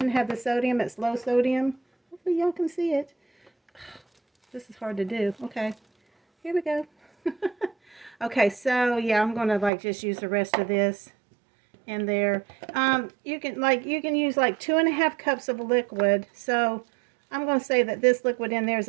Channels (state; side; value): drops out; left; at 9.7 s